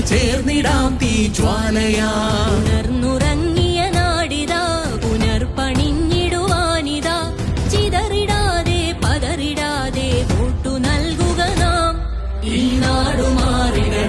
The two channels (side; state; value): both; identical; correlation 1.00